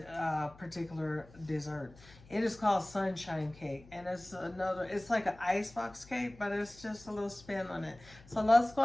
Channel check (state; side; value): noise; left; hum, 22 dB below the sound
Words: particular dessert. It is called Sunshine Cake, and it's like an icebox cake, but it's just a little spin on it. So let's go